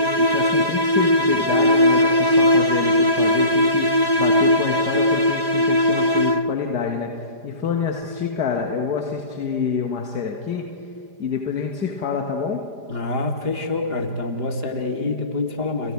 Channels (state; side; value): late; left; 4.9 ms